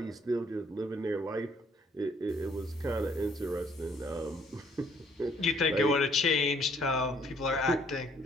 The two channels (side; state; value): both; normal; correlation 0.63